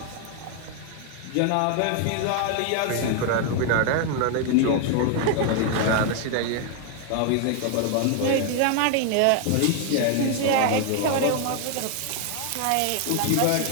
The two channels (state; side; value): different; both; correlation 0.00